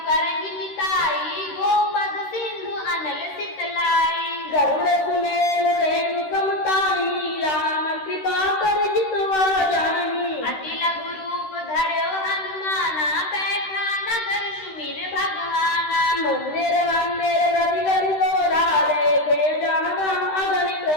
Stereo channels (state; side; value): late; right; 13 ms